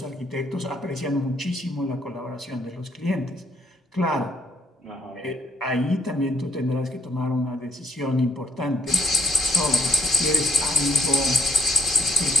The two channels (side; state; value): both; normal; correlation 0.64